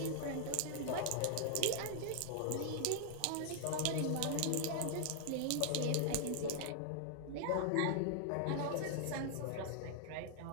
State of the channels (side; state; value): both; different; correlation 0.00